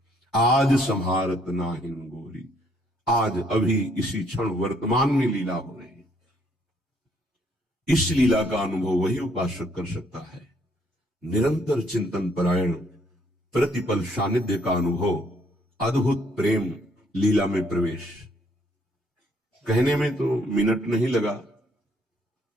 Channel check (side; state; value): both; normal; correlation 0.67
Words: आज संहारत नाहिन गोरी। आज अभी इसी क्षण वर्तमान में लीला हो रही है। इस लीला का अनुभव वही उपासक कर सकता है। निरंतर चिंतन परायण, प्रतिपल सानिध्य का अनुभव, अद्भुत प्रेम, लीला में प्रवेश। कहने में तो मिनट नहीं लगा,